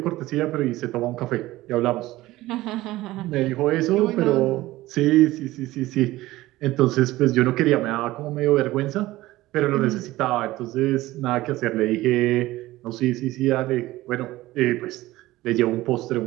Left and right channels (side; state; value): left; quieter; 17.3 dB